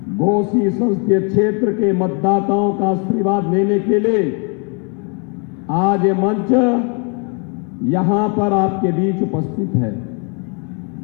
घोसी संसदीय क्षेत्र के मतदाताओं का आशीर्वाद लेने के लिए आज ये मंच यहां पर आपके बीच उपस्थित है।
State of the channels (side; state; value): right; quieter; 36.7 dB